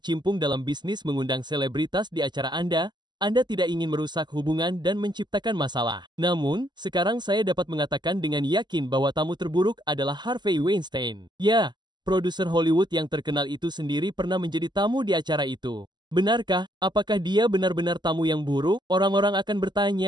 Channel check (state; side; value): late; left; 0.21 ms